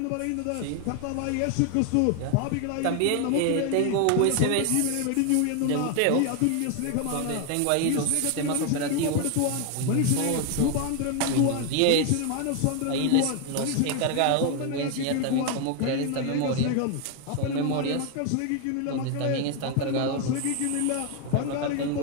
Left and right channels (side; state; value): both; different; correlation 0.01